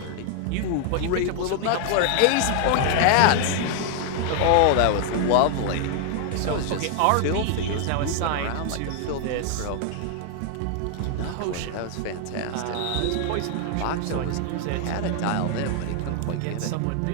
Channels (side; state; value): both; different; correlation 0.00